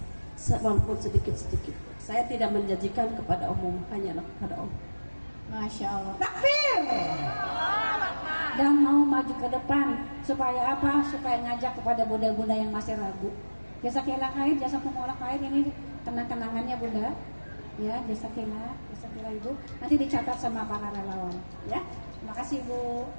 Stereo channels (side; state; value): both; inverted; correlation -1.00